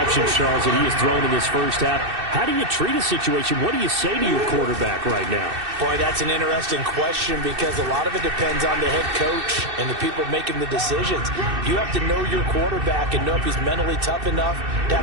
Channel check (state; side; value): late; left; 2.6 ms